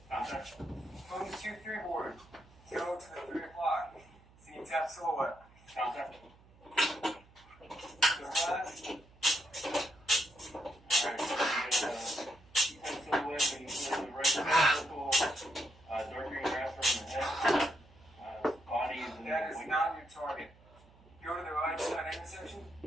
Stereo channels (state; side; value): noise; right; hum, 26 dB below the sound